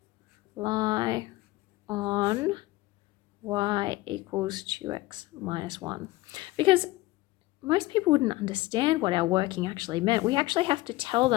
lie on y equals 2x minus 1. Because most people wouldn't understand what our working actually meant. We actually have to tell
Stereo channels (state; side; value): quieter; right; 19.0 dB